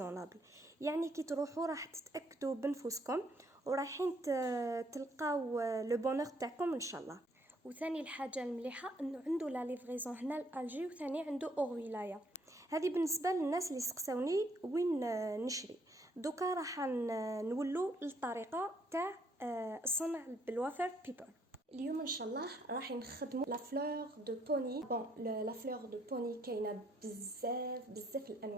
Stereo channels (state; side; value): normal; both; correlation 0.69